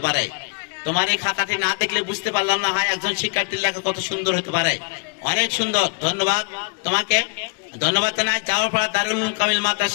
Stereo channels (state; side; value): quieter; right; 33.9 dB